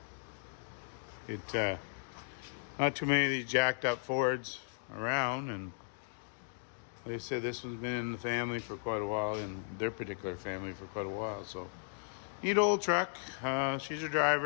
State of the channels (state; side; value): silent; right; digital silence